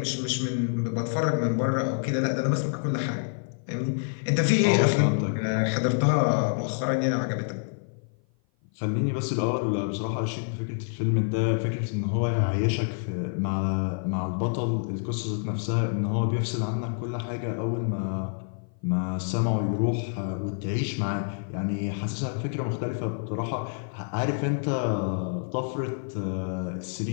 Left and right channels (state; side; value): silent; right; 55 dB below the other